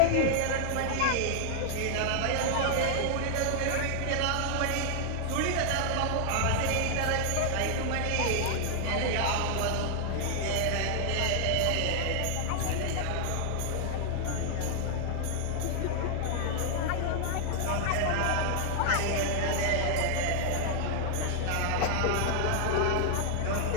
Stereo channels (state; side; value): different; both; correlation 0.00